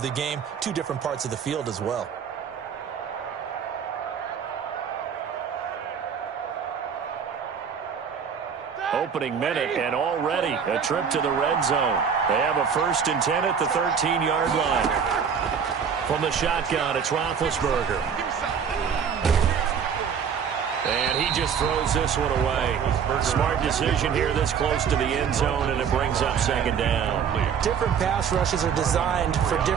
the game. Two different parts of the field as well. Opening minute, and already a trip to the red zone. They have a 1st and 10 at the 13-yard line. From the shotgun, it's Roethlisberger. And he just throws this one away. Smart decision here this close to the end zone, and it brings up 2nd down. Different pass rushes are designed for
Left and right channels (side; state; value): left; quieter; 7.1 dB